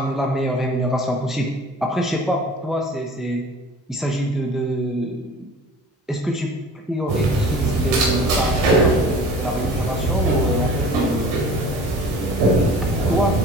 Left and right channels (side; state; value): both; normal; correlation 0.44